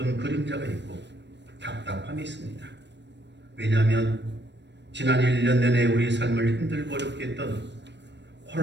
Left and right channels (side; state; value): left; late; 0.51 ms